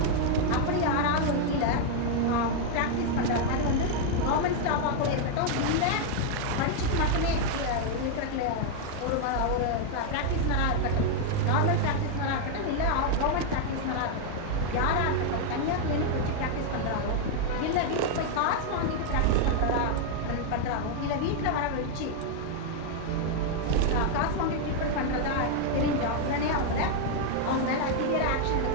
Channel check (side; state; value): both; different; correlation 0.00